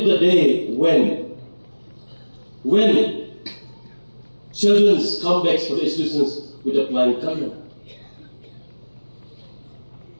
the day when children come back for the institutions with a flying color.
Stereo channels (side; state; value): both; inverted; correlation -1.00